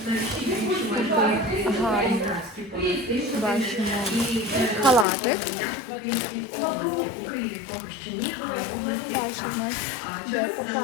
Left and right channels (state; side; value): drops out; right; at 5.1 s